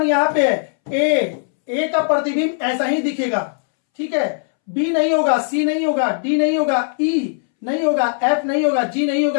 यहां पे है, ए का प्रतिबिंब ऐसा ही दिखेगा, ठीक है। बी नहीं होगा, सी नहीं होगा, डी नहीं होगा, ई नहीं होगा, एफ नहीं होगा, जी नहीं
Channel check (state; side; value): silent; right; 66 dB below the other